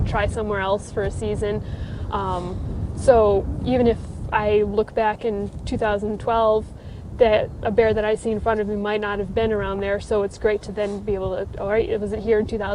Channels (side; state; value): both; identical; correlation 1.00